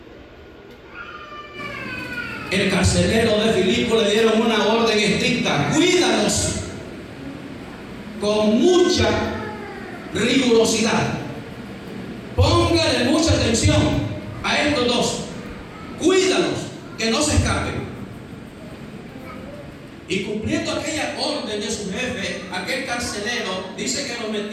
El carcelero de Filipo le dieron una orden estricta: cuídalos con mucha rigurosidad. Póngale mucha atención a estos dos. Cuídalos, que no se escapen. Y cumpliendo aquella orden de su jefe, aquel carcelero dice que lo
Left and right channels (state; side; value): identical; both; correlation 1.00